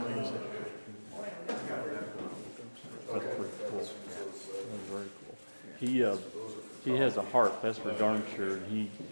That's pretty cool. That's very cool. He has a heart, that's for darn sure.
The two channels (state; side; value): inverted; both; correlation -1.00